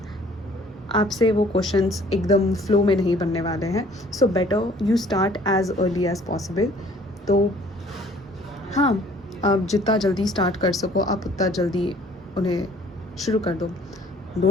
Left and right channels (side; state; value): both; normal; correlation 0.56